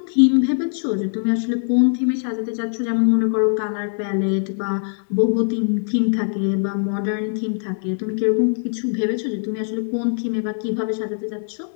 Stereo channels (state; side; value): silent; right; digital silence